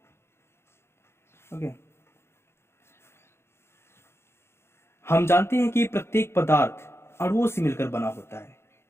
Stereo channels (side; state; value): right; late; 0.12 ms